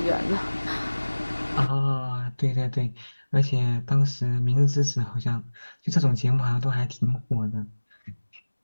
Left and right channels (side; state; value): both; inverted; correlation -1.00